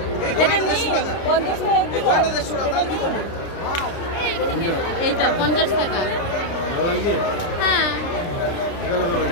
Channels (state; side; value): late; right; 30 ms